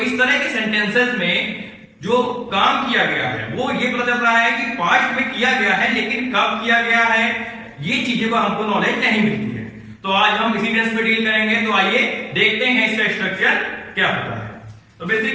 तरह के सेंटेंसेस में जो काम किया गया है वो ये पता चल रहा है कि पास्ट में किया गया है, लेकिन कब किया गया है ये चीजों का हमको नॉलेज नहीं मिलती है। तो आज हम इसी टेंस पे डील करेंगे। तो आइए देखते हैं इसका स्ट्रक्चर क्या होता है। तो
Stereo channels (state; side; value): identical; both; correlation 1.00